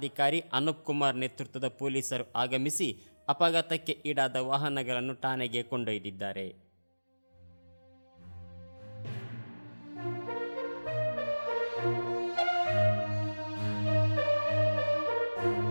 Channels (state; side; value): inverted; both; correlation -1.00